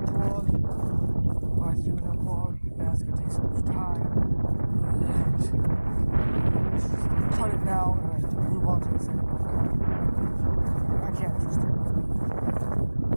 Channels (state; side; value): inverted; both; correlation -1.00